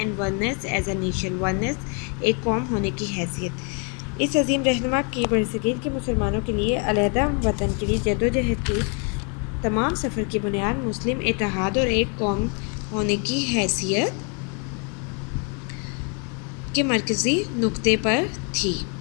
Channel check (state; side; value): quieter; right; 36.4 dB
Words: oneness as a nation, oneness एक कौम होने की हैसियत। इस अजीम रहनुमा की बरसगीर के मुसलमानों के लिए अलहदा वतन के लिए जदोजहद की तमाम सफ़र की बुनियाद मुस्लिम इत्तेहाद और एक कौम होने की हैसियत के मरकज़ी नुक्ते पर थी।